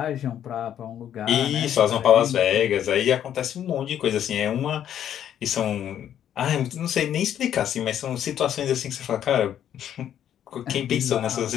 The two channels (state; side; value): quieter; right; 10.2 dB